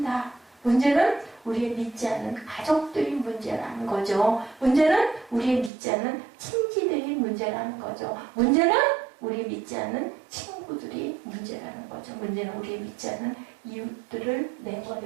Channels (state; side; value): drops out; left; at 5.7 s